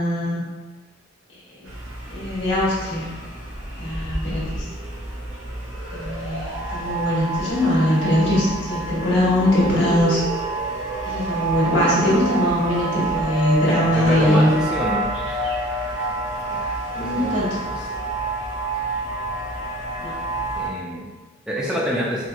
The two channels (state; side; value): normal; both; correlation 0.53